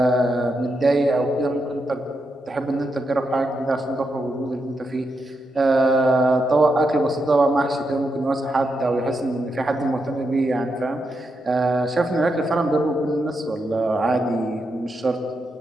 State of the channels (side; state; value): both; normal; correlation 0.84